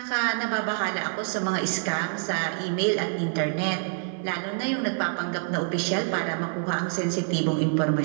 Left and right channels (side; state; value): left; silent; digital silence